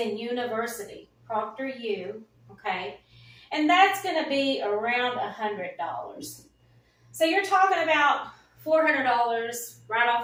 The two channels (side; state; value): both; identical; correlation 1.00